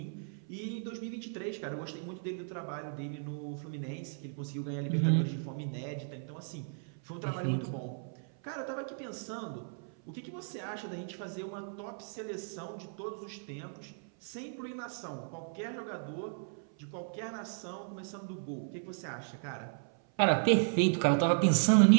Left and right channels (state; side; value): silent; left; 54 dB below the other